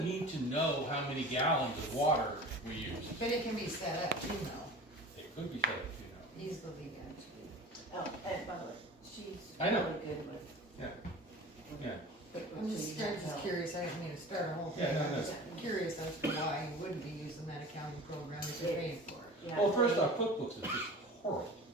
need to know how many gallons of water we use. But it can be set up too, though. It could be set up, Easily, Oh, and by the way, she's I know. really good with. Yeah. I'm just curious, I didn't mean to start a whole thing. Yeah, no, I'm no. just curious as to why you wouldn't be using that accounting program if you're paying for it. Yeah. Well, first off, QuickBooks is just horrible.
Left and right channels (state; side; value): normal; both; correlation 0.38